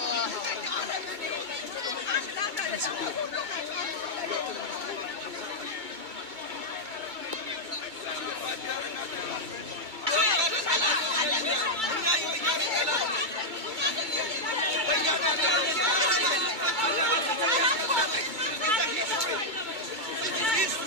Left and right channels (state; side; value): late; left; 2.3 ms